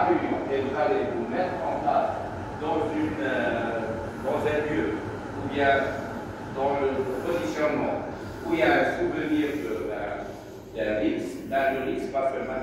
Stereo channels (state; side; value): identical; both; correlation 1.00